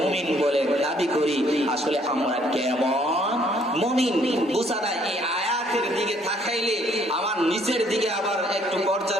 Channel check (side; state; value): both; normal; correlation 0.64